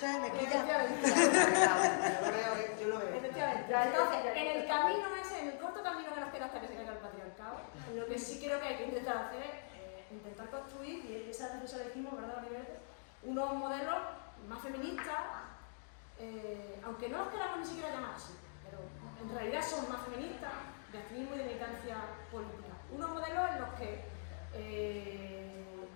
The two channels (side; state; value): right; silent; digital silence